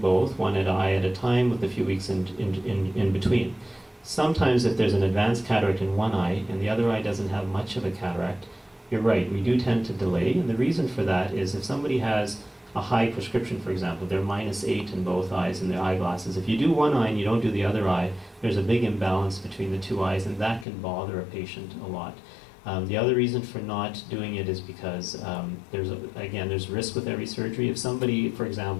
one eye at a time with a few weeks in between. Sometimes if there's an advanced cataract in one eye and the other eye doesn't have much of a cataract, you're right, we do tend to delay. And the reason for that is if somebody has a high prescription, for example, they're -8 in both eyes in their eyeglasses. If you do one eye and you don't do the other eye, there's a big imbalance between the two eyes, and that can bother a patient a lot. The other reason for not doing it is because there's risk with every surgery. If somebody, for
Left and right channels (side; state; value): right; drops out; at 20.7 s